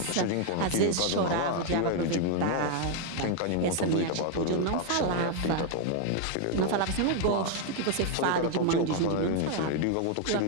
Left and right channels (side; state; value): both; different; correlation 0.00